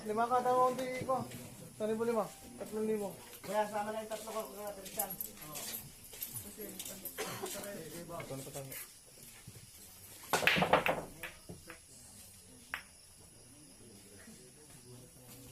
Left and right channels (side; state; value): both; identical; correlation 1.00